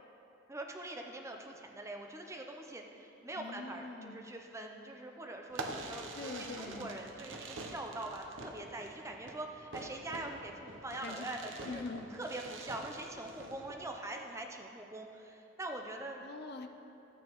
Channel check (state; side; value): normal; both; correlation 0.30